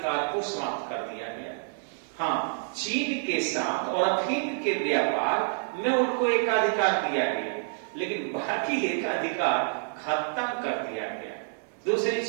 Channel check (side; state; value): left; silent; digital silence